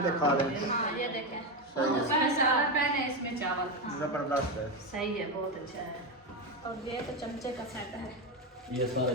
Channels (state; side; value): normal; both; correlation 0.12